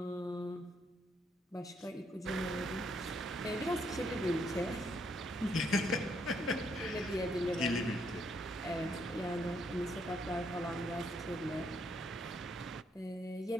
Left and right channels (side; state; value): both; normal; correlation 0.73